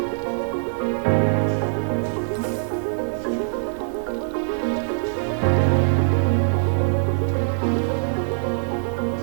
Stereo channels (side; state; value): left; silent; 62 dB below the other